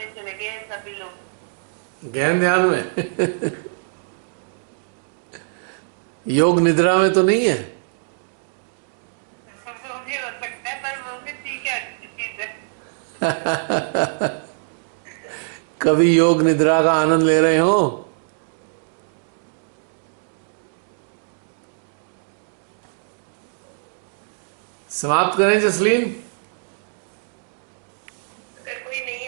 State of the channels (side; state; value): left; silent; digital silence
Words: चले गए सभी लोग। गहन ध्यान में योग निद्रा में तो नहीं है? वो भी हो सकता है, पर वो भी ठीक है, अच्छी चीज है। कभी योग निद्रा का आनंद ले रहे हो? समाप्त करें जसलीन? अगर कोई नहीं